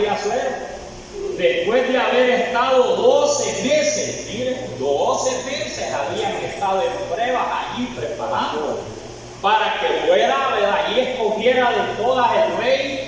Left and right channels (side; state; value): both; identical; correlation 1.00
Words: Asuero, después de haber estado 12 meses, miren, 12 meses habían estado en pruebas allí preparando para que fuera, ¿verdad?, y escogiera de todas el